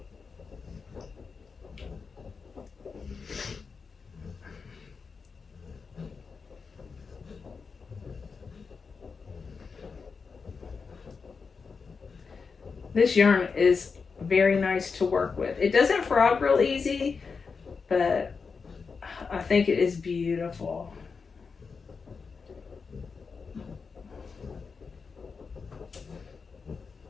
This yarn is very nice to work with. It doesn't frog real easy, but I think it is beautiful.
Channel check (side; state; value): right; quieter; 5.1 dB